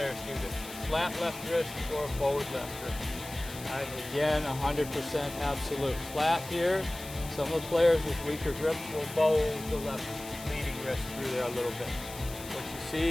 do this: flat left wrist or bowed left wrist. All right. Again, 100% absolute. Flat here. Some of the players with weaker grips will bow the left leading wrist through there a little bit. What you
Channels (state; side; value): noise; left; hiss, 14 dB below the sound